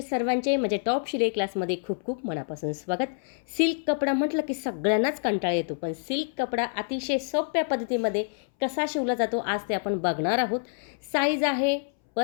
सर्वांचे म्हणजे टॉप शिलाई क्लासमध्ये खूप खूप मनापासून स्वागत. सिल्क कपडा म्हटलं की सगळ्यांनाच कंटाळा येतो, पण सिल्क कपडा अतिशय सोप्या पद्धतीमध्ये कसा शिवला जातो आज ते आपण बघणार आहोत. साईज आहे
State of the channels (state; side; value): silent; right; 60 dB below the other